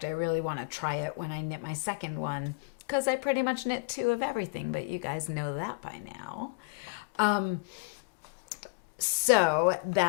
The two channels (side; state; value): right; quieter; 27.4 dB